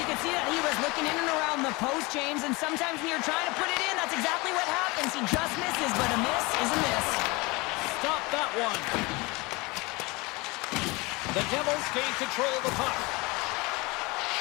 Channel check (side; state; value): right; quieter; 24.7 dB